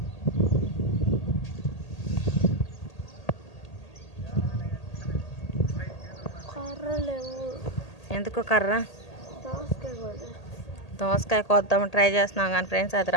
ఎందుకో కర్ర? దోసకాయ కోద్దామని ట్రై చేస్తున్నాం కానీ ఫ్రెండ్స్ అది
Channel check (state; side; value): late; right; 1.8 ms